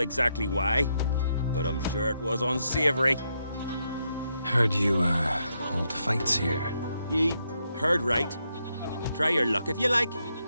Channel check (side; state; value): both; inverted; correlation -0.80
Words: why, but I'm sure it was unsavory. Heard you, hold fights here. Ye heard right. Try your luck if you like.